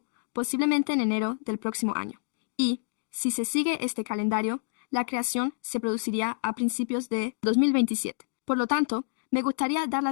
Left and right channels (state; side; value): silent; right; digital silence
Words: posiblemente en enero del próximo año. Y, si se sigue este calendario, la creación se produciría a principios de 2027. Por lo tanto, me gustaría dar